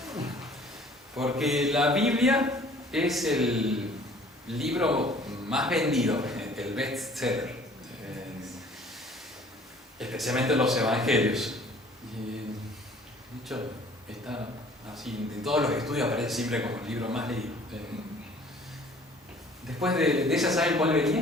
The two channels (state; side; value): normal; both; correlation 0.52